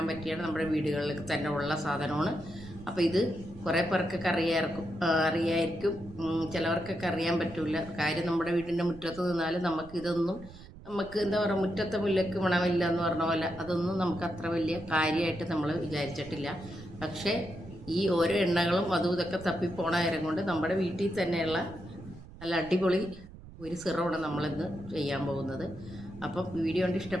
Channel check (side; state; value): right; noise; rumble, 17 dB below the sound